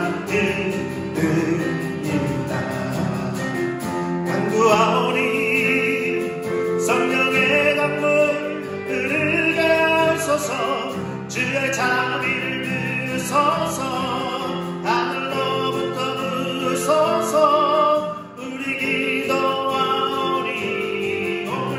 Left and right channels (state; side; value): identical; both; correlation 1.00